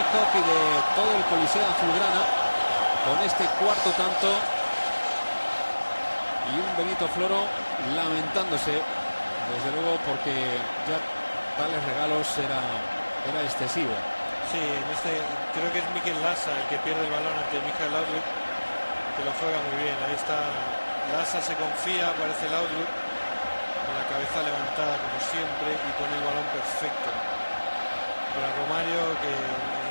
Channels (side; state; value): both; inverted; correlation -1.00